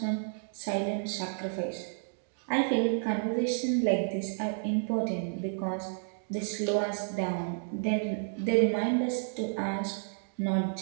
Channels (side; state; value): left; silent; digital silence